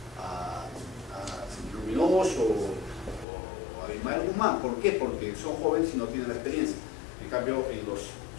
Luminoso o a Abimael Guzmán. ¿Por qué? Porque son jóvenes y no tienen la experiencia. En cambio, en los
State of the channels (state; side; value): drops out; right; at 3.2 s